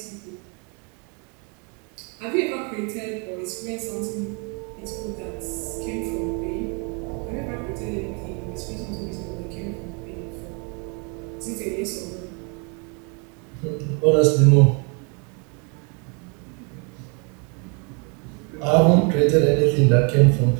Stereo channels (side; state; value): left; quieter; 35.4 dB